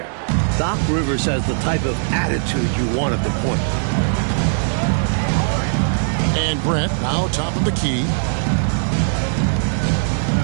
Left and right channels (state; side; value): silent; left; digital silence